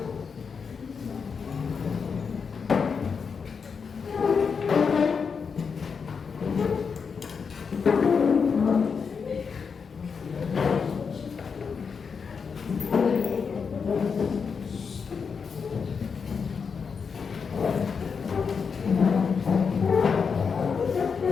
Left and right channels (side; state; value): right; quieter; 5.8 dB